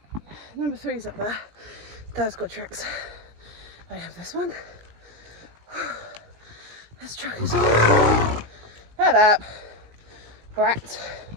number three's up there. Dad's got tricks. I have this one. This truck is on. Head up, brat.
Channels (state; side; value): late; left; 19 ms